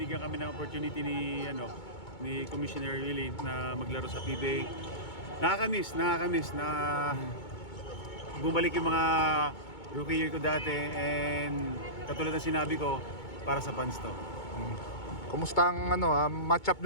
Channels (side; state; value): right; late; 2.2 ms